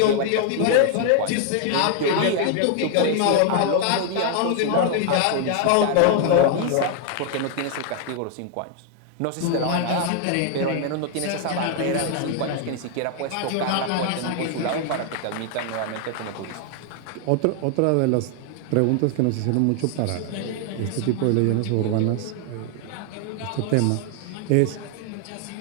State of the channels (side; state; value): both; different; correlation 0.00